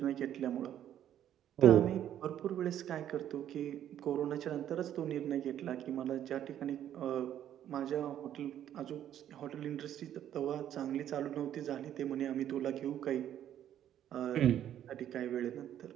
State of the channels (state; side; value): quieter; left; 10.8 dB